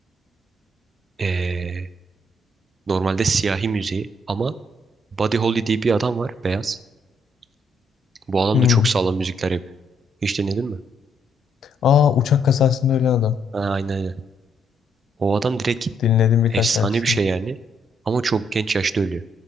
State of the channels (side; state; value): both; normal; correlation 0.73